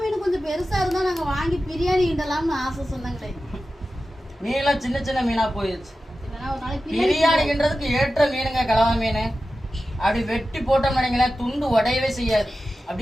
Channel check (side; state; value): both; normal; correlation 0.93